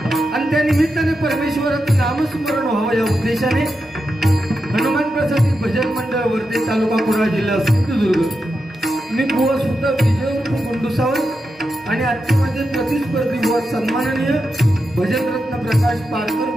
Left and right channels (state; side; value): normal; both; correlation 0.88